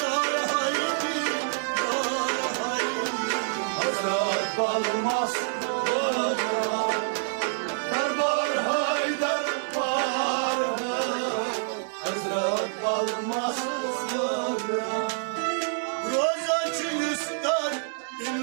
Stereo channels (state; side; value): silent; left; digital silence